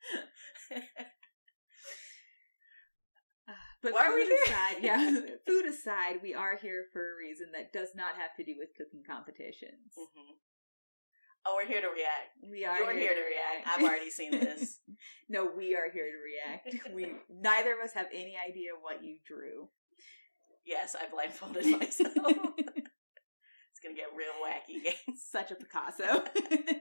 But why are we here? Food aside, we are here for a reason that does not have to do with cooking competitions. Mm-hmm. Oh, we're here to react. We are. You're here to react. I've already seen this. No, we are here to react. Neither of us have any idea what you drew. Yes, I blindfolded myself. It's gonna get real wacky, guys. Such a Picasso.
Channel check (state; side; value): inverted; both; correlation -1.00